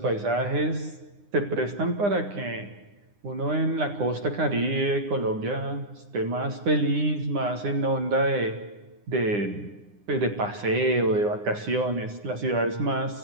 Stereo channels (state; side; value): late; left; 9.8 ms